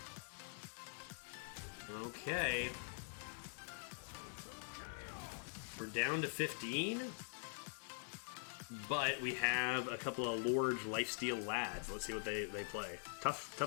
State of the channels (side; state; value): right; silent; digital silence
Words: Okay. We're down to 15. But we have a couple of large lifesteal lads. Let's see what they play.